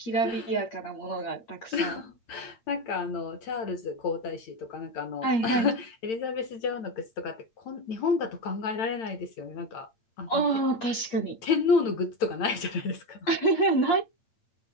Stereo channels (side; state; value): right; late; 8.6 ms